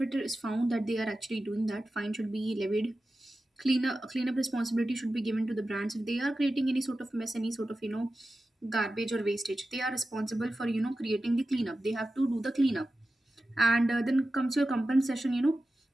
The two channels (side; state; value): both; normal; correlation 0.93